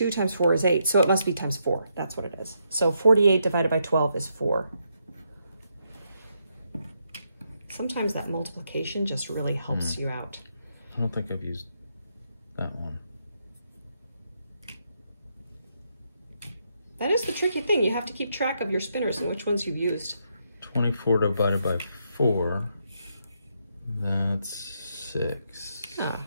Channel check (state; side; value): inverted; both; correlation -0.78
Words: times 4 is 8, so it must be times 4. That's what it is. So 48 divided by 12 is 4. Sometimes that multiplication just really helps you out. I don't think I've used that one. That is the tricky thing. You have to keep track of your spinners and which ones you've used. 24 divided by 4, that's 6. Oh,